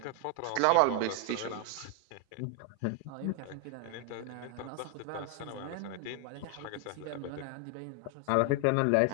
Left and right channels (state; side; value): different; both; correlation 0.00